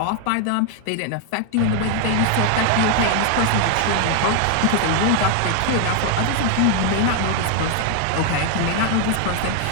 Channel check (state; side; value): different; both; correlation 0.00